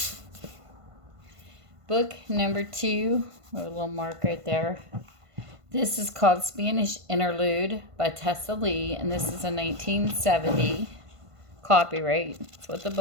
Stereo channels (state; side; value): late; left; 1.5 ms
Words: Book number 2, a little mark right there. This is called Spanish Interlude by Tessa Lee, and this is a 1970 copyright. That's what the